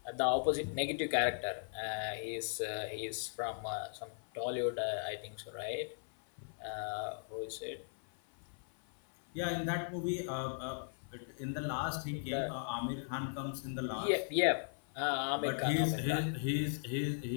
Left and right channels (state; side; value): silent; right; 53 dB below the other